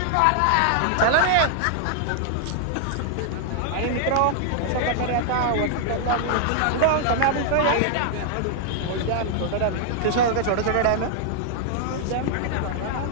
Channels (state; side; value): different; both; correlation -0.01